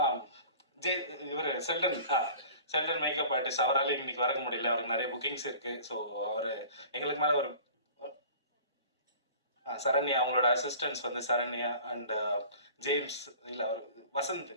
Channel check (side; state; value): both; inverted; correlation -0.45